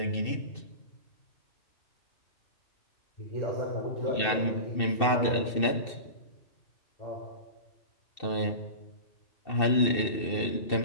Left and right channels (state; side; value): late; right; 2.7 ms